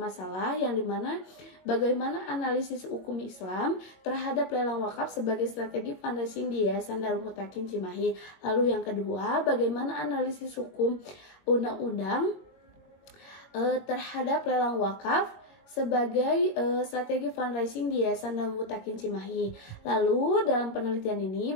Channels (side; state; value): right; late; 22 ms